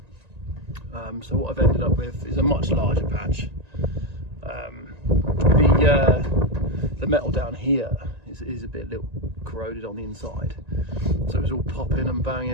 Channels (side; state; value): left; late; 1.9 ms